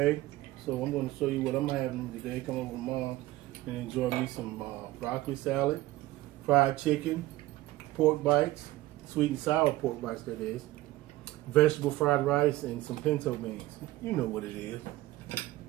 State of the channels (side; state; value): left; quieter; 17.5 dB